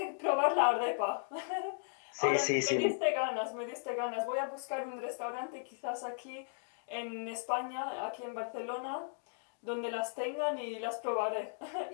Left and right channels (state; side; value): silent; right; digital silence